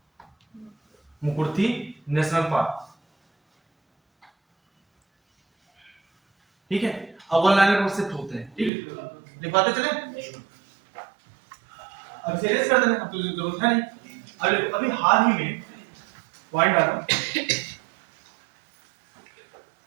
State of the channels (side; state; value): left; drops out; at 8.7 s